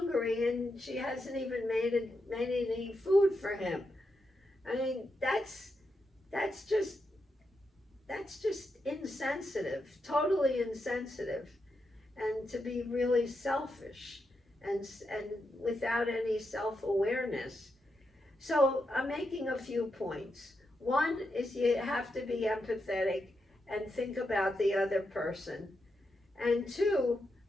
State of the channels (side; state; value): both; normal; correlation 0.85